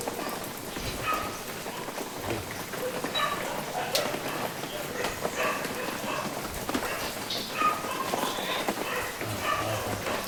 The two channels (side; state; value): both; identical; correlation 1.00